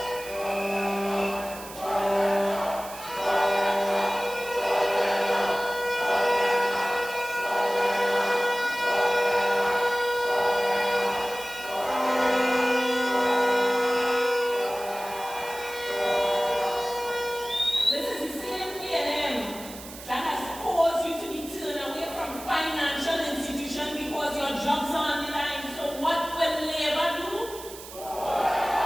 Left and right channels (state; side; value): noise; right; hiss, 15 dB below the sound